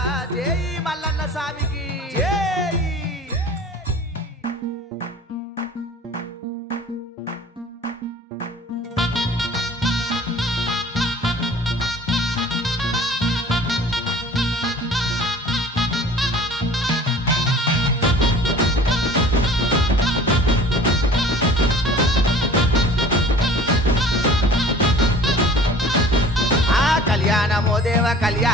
జై మల్లన్న స్వామికి జై. కళ్యాణము దేవ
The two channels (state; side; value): normal; both; correlation 0.46